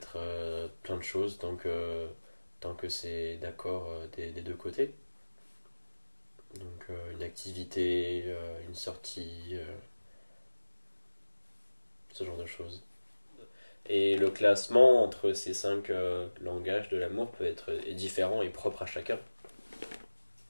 plein de choses tant que c'est d'accord des deux côtés. Donc une activité, une sortie, ce genre de choses. Et le classement entre ces cinq langages de l'amour peut être est différent et propre à chacun.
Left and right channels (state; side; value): inverted; both; correlation -1.00